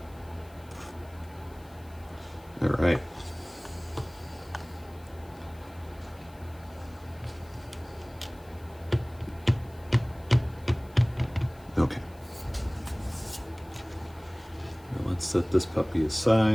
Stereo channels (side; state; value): left; noise; hiss, 26 dB below the sound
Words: All right. Okay. Now let's set this puppy